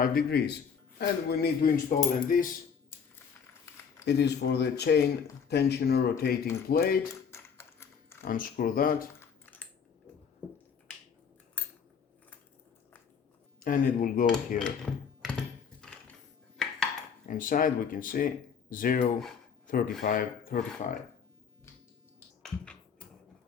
degrees. And we need to install in this. It is for the chain tensioner rotating plate. Unscrew that. And it will go here. Inside we can see 0, 35, 35.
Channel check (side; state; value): right; quieter; 6.6 dB